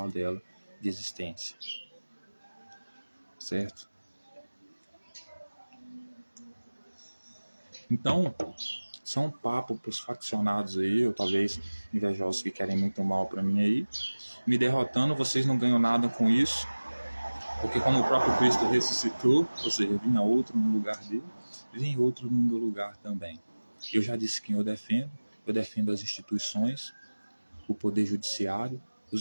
dela de existência, certo? Então, são um papo para os faccionados aí, ou talvez invejosos que querem muito mal para mim aí. Me derrotando, vocês não ganham nada com isso, porque como o próprio Cristo ressuscitou, ou seja, vinha outro no lugar dele, vem outro no meu lugar também. Eu já disse quem eu defendo as instituições, o poder judiciário,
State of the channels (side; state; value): both; inverted; correlation -1.00